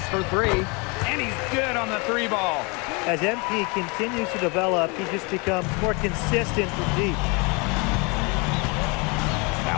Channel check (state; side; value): quieter; right; 30.0 dB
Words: for three. And he's good on the three ball. As MP continues to develop, he just becomes more consistent from deep.